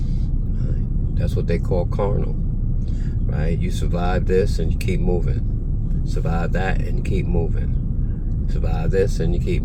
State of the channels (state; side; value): identical; both; correlation 1.00